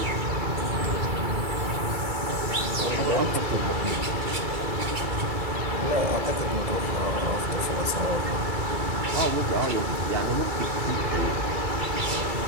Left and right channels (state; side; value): late; left; 2.3 ms